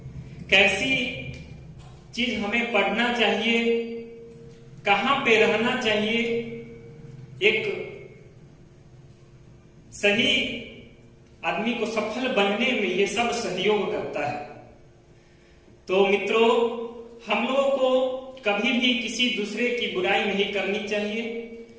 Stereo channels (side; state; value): both; identical; correlation 1.00